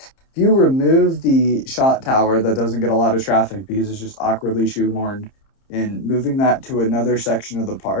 you remove the shot tower that doesn't get a lot of traffic because it's just awkwardly shoehorned and moving that to another section of the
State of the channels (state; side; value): late; right; 30 ms